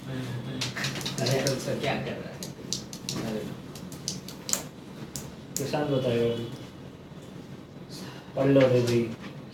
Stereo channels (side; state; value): both; identical; correlation 1.00